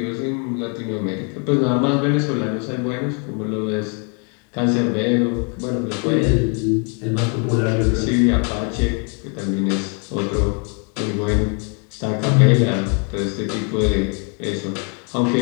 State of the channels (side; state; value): right; quieter; 37.6 dB